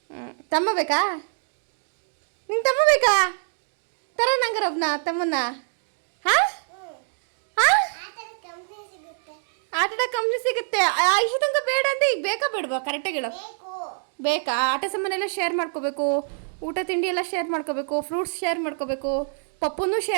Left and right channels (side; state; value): left; silent; digital silence